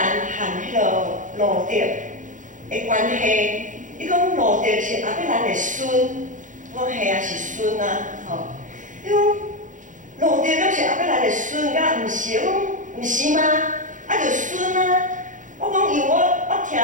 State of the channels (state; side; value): late; left; 0.37 ms